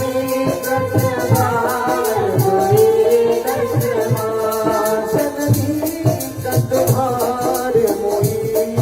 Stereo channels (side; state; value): both; identical; correlation 1.00